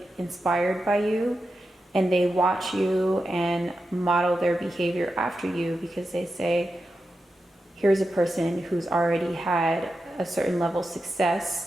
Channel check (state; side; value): normal; both; correlation 0.90